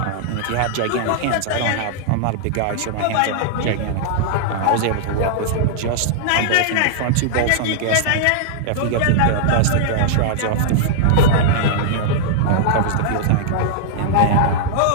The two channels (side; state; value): both; different; correlation -0.01